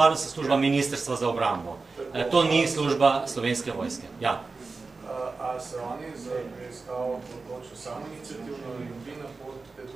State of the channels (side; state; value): left; quieter; 4.0 dB